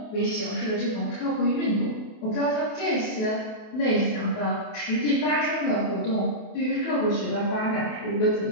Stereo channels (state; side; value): late; right; 28 ms